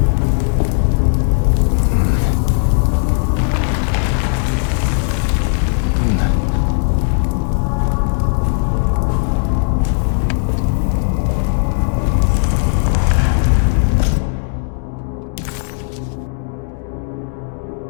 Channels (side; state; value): right; silent; 68 dB below the other